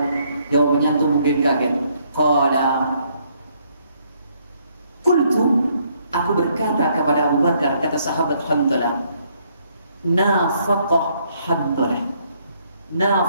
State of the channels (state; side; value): inverted; both; correlation -0.70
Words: Jawabannya antum mungkin kaget. Qala qultu, aku Aku berkata kepada Abu Bakar, kata sahabat Hanzalah, nafaqah Hanzalah.